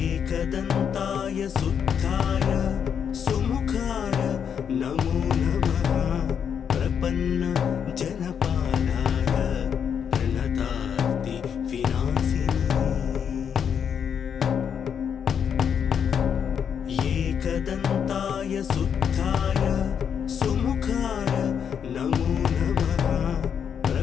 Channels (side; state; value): right; quieter; 7.7 dB